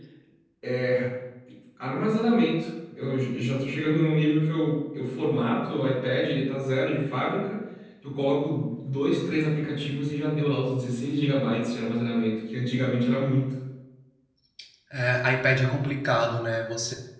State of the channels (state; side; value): identical; both; correlation 1.00